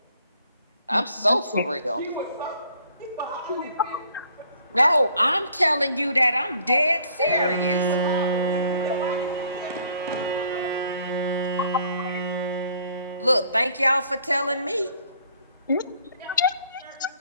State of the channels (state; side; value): inverted; both; correlation -0.61